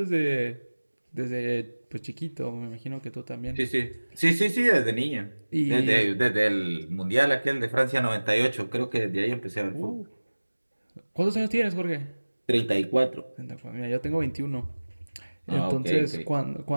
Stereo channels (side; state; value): both; inverted; correlation -1.00